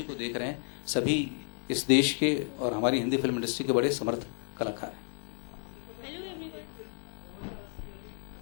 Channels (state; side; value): silent; right; 57 dB below the other